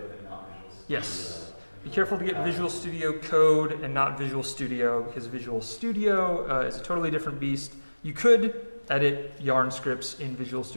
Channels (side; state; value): both; inverted; correlation -1.00